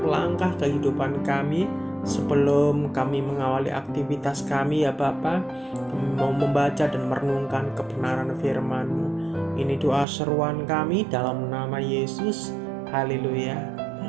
langkah kehidupan kami. Sebelum kami mengawali aktivitas kami ya Bapa, kami mau membaca dan merenungkan kebenaran firman-Mu. Ini doa seruan kami dalam nama Yesus. Haleluya.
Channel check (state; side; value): drops out; left; at 10.1 s